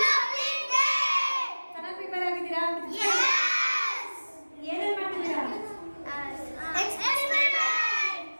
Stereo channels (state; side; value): inverted; both; correlation -1.00